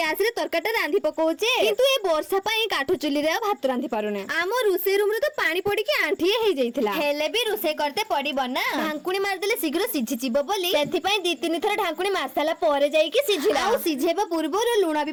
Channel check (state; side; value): identical; both; correlation 1.00